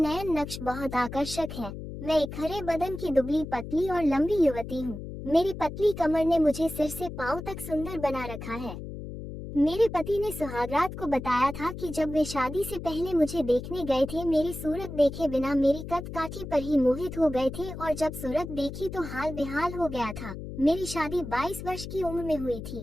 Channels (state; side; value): noise; left; hum, 9 dB below the sound